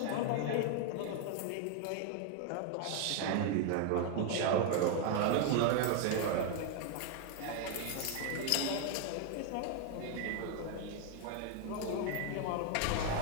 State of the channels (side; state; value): both; different; correlation 0.01